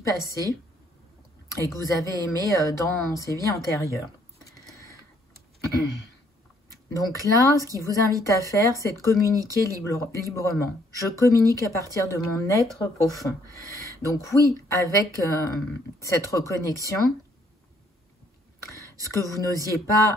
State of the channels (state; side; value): normal; both; correlation 0.66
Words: et que vous avez aimés dans ces vies antérieures. Donc là, ce qui vous invite à faire, c'est de communiquer librement. Je communique à partir de mon être profond. Donc oui, avec cette reconnexion, ce que vous n'osiez